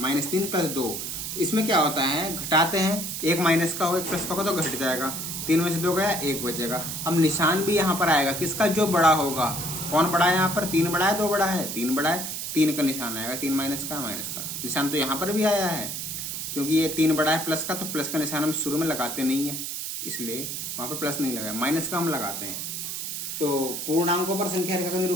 + 2। इसमें क्या होता है? घटाते हैं, एक माइनस का हो एक प्लस का होगा तो घट जाएगा, 3 में से 2 गया 1 बचेगा। अब निशान भी यहाँ पर आएगा, किसका? जो बड़ा होगा। कौन बड़ा है यहाँ पर? 3 बड़ा है, 2 बड़ा है? 3 बड़ा है, 3 का निशान आएगा, 3 माइनस का निशान तो यहाँ पर भी आया है, क्योंकि ये 3 बड़ा है प्लस का, तो प्लस का निशान हम शुरू में लगाते नहीं है, इसलिए वहां पर प्लस नहीं लगाया, माइनस का हम लगाते हैं। तो पूर्णांकों पर संख्या रेखा का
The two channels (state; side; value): noise; right; hiss, 5 dB below the sound